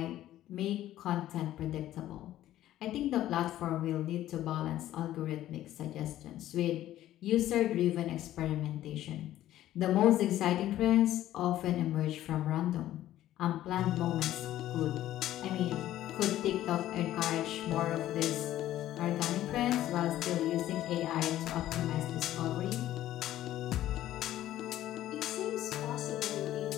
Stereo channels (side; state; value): right; quieter; 13.5 dB